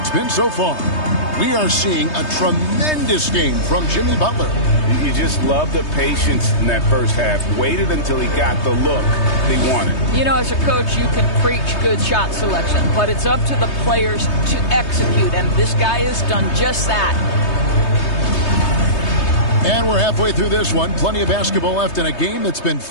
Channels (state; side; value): late; right; 3.2 ms